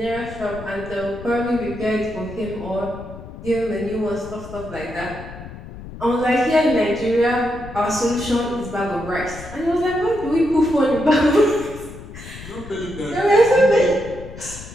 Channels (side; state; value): left; noise; rumble, 14 dB below the sound